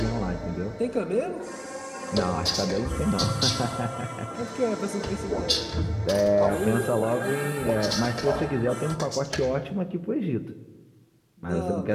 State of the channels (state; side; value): identical; both; correlation 1.00